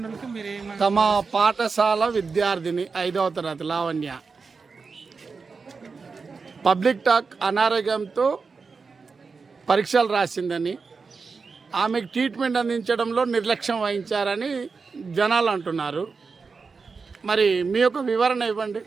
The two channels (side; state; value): left; quieter; 4.8 dB